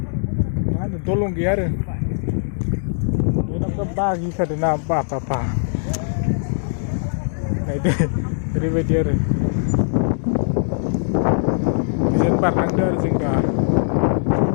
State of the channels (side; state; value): right; silent; digital silence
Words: मा होनो दलं गैया आरो बेनाव बागिखादों ना बा नायदो ओरैबायदि आरो बिजों बारलांदो आरो जों दा